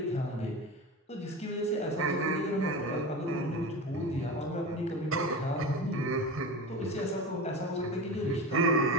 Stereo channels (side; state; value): both; normal; correlation 0.27